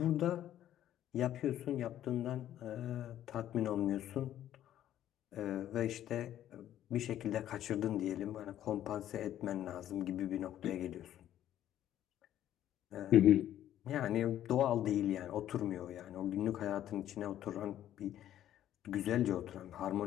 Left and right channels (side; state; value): right; quieter; 11.8 dB